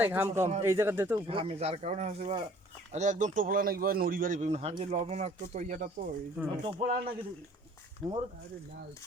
ঘাম কম, এই জায়গা দে তো উপরে। ঘামে যার কারণে হচ্ছে বা আরে একদম টোপলা নাকি ভাই নড়ি বাড়ি পেন হাট যে লবণাক্ত তো ইয়াটা তো এই জন্য টোপলা নাকি মোর আরে না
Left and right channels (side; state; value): both; normal; correlation 0.54